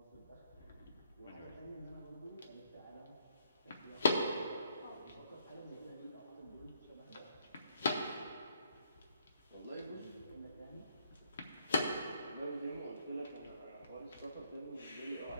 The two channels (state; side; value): inverted; both; correlation -0.71